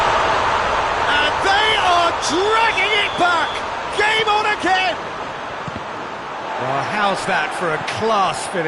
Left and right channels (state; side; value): identical; both; correlation 1.00